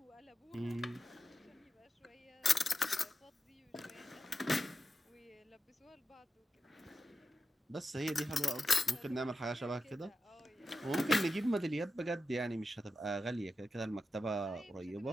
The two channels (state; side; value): normal; both; correlation 0.91